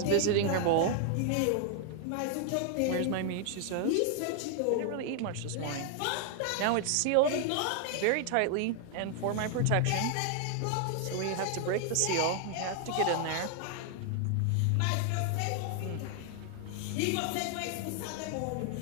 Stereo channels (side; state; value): both; different; correlation 0.00